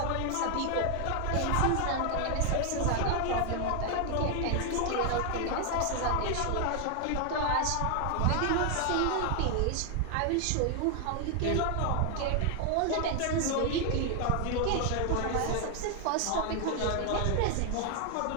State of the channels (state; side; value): different; both; correlation 0.00